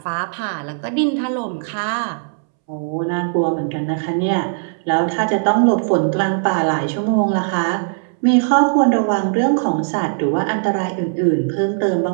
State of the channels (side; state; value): left; silent; 67 dB below the other